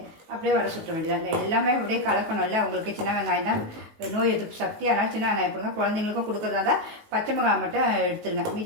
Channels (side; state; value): left; late; 18 ms